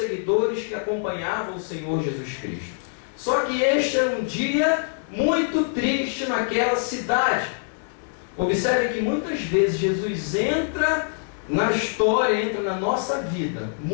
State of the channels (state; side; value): silent; right; 62 dB below the other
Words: que acompanhavam o Senhor Jesus Cristo. Só que este era um dia muito triste naquela cidade. Observe que muitas vezes Jesus entra na história, entra na nossa vida,